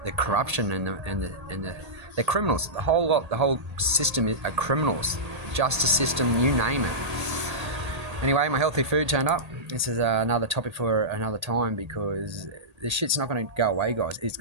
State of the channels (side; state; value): left; late; 1.8 ms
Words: the corruption and the criminals. The whole lot, the whole system are criminals. Justice system, you name it. Anyway, my healthy food turned up. This is another topic for another time, because this shit's not going to go away, guys. It's